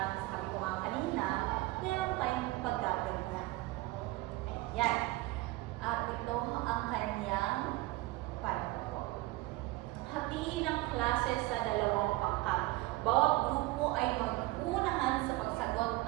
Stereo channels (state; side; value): quieter; left; 19.6 dB